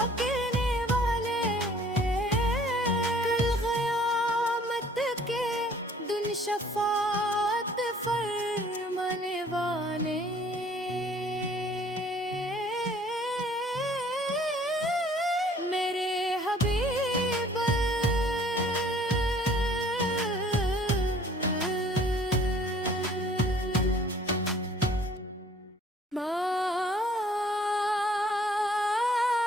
شفاعت فرمانے والے میرے حبیب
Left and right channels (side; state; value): both; normal; correlation 0.55